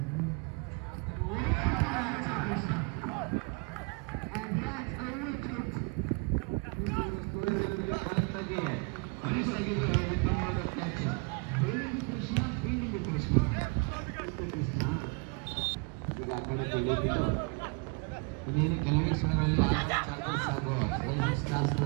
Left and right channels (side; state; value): left; quieter; 31.6 dB